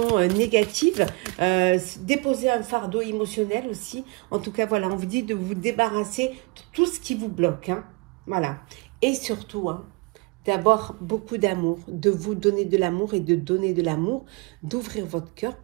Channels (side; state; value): left; quieter; 28.4 dB